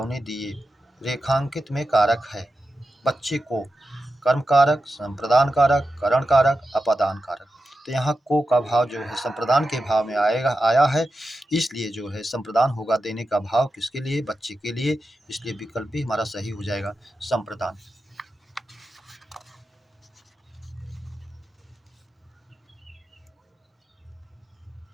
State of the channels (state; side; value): normal; both; correlation 0.90